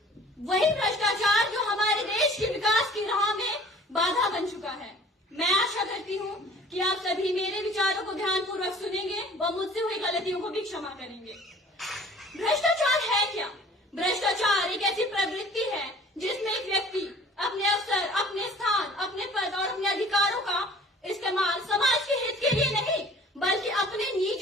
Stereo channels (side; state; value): both; normal; correlation 0.49